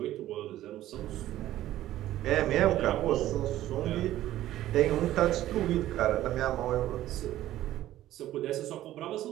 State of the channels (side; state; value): left; quieter; 13.9 dB